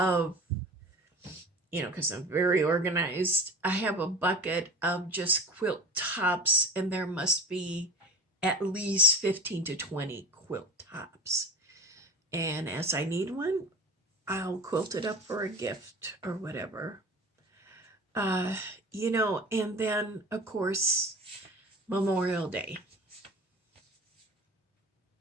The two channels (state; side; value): normal; both; correlation 0.35